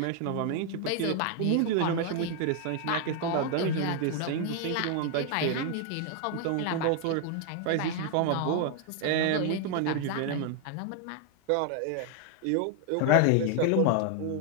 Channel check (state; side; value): different; both; correlation 0.00